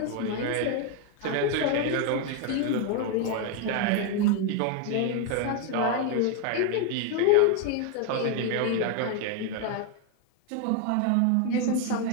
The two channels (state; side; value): different; both; correlation 0.01